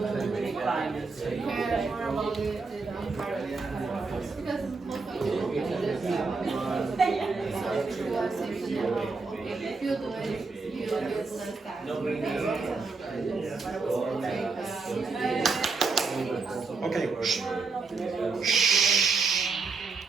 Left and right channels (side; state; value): left; quieter; 4.2 dB